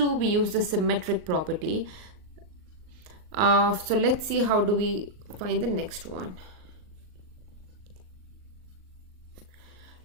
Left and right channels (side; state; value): left; late; 38 ms